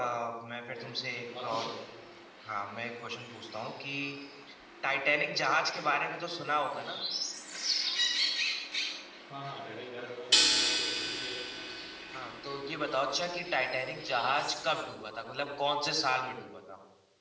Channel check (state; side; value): identical; both; correlation 1.00